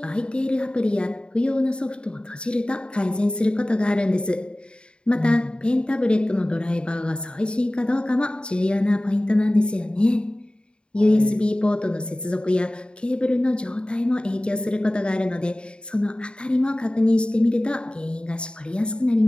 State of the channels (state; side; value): late; right; 0.052 ms